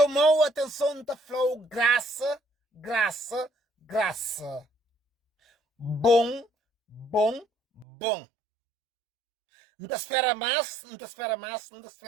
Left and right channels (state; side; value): drops out; left; at 7.9 s